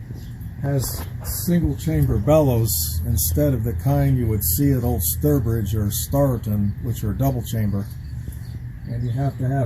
has single chamber bellows instead of the kind you would see at Old Sturbridge or Starleton, which are double chamber. And you have to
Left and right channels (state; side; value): identical; both; correlation 1.00